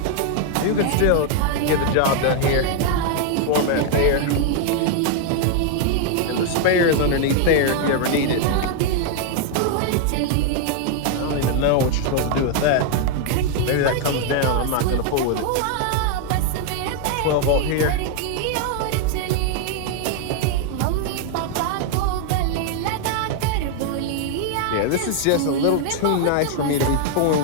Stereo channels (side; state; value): both; different; correlation 0.00